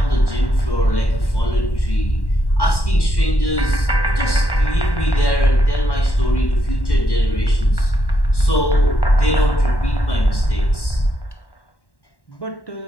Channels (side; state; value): right; late; 1.1 ms